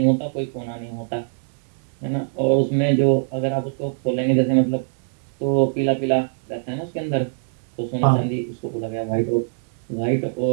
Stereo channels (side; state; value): left; silent; digital silence